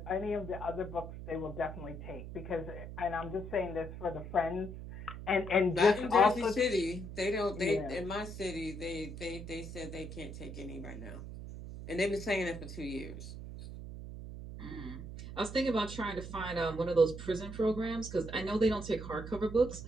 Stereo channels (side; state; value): right; noise; hum, 10 dB below the sound